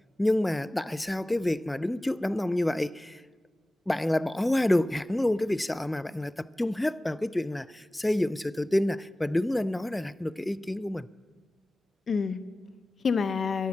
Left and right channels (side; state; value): both; normal; correlation 0.97